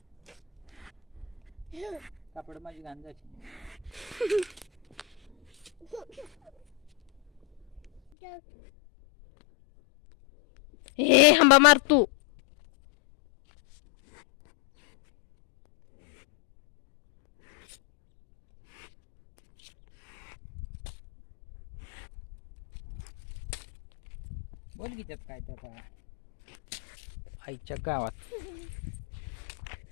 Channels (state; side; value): drops out; right; at 8.0 s